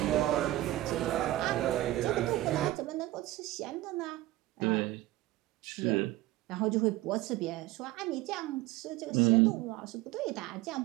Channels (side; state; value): left; quieter; 16.6 dB